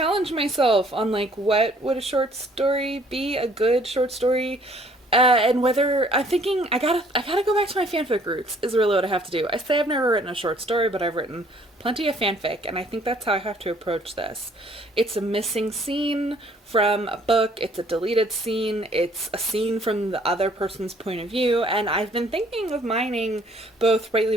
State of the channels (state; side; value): normal; both; correlation 0.60